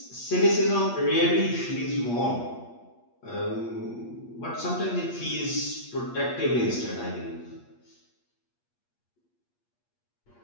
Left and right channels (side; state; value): right; late; 8.5 ms